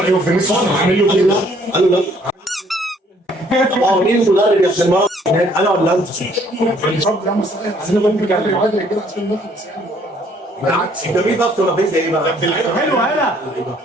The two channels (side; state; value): both; normal; correlation 0.62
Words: فينيسيوس عامل له كده. قالوا لا. طب مين المدرب يا ابن المرة هناك، انا ولا انت؟ عايزين نقول كده عشان نخلص يعني. بالعكس انت مين بقى ولا فين ايه بقى؟ حلو هلا